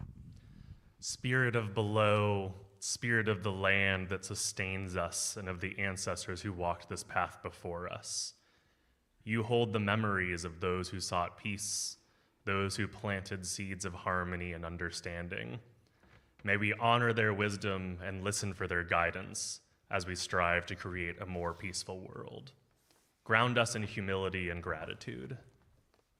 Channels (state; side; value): identical; both; correlation 1.00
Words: Spirit of below, Spirit of the land that sustains us and of the ancestors who walked this path before us. You hold the memories of those who sought peace, those who planted seeds of harmony and understanding. May we honor their wisdom and listen for their guidance as we strive to create a more peaceful world. Ground us in humility and gratitude.